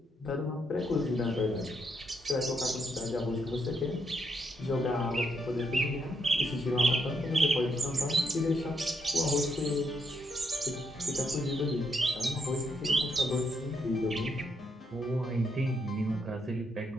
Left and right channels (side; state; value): both; normal; correlation 0.77